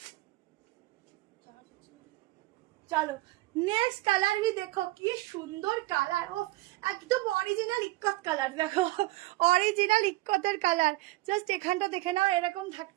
চার্জ হচ্ছে না। চলো নেক্সট কালার भी দেখো, কি সুন্দর কালার। ও একদম অরিজিনাল ইক্কত কালার, দেখো অরিজিনাল ইক্কতের কালার। জাস্ট এখানটা দেখে নাও, এরকম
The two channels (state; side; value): quieter; left; 19.0 dB